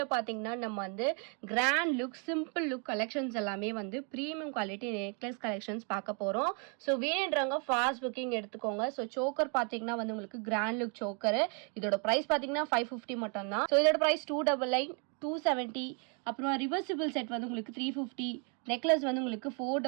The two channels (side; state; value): left; quieter; 37.6 dB